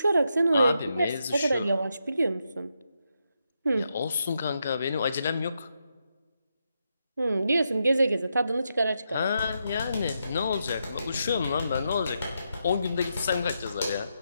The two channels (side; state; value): both; inverted; correlation -0.83